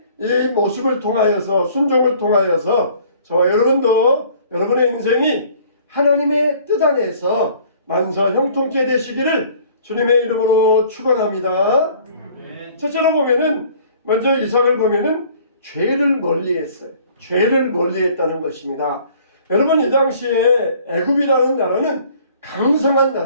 이 모습을 통하여서 순종을 통하여서 저와 여러분도 여러분의 인생이 하나님의 뜻 안에서 만사형통케 되시기를 주님의 이름으로 축원합니다. 첫째로 보면은 먼저 이삭을 보면은 죄를 멀리했어요. 죄를 멀리했다는 것입니다. 여러분 이 당시에 애굽이라는 나라는 강성한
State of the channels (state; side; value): inverted; both; correlation -0.54